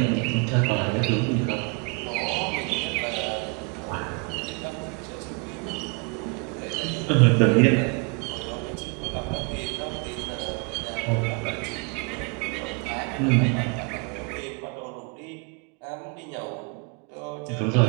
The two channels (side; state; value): left; quieter; 31.6 dB